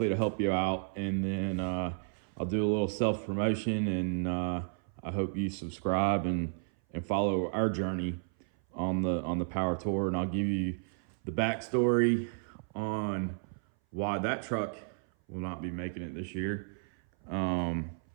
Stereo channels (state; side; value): silent; left; 56 dB below the other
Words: to help you out. And then I'll do a little self promotion, and I hope you subscribe and follow our journey on the power tour. And I'll give you the backstory on why that truck will not be making it this year.